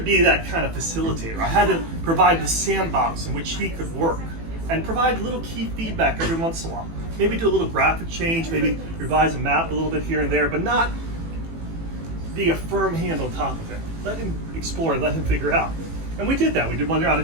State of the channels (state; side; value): late; left; 18 ms